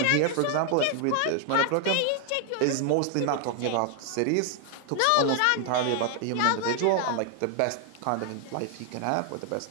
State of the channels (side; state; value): both; different; correlation 0.00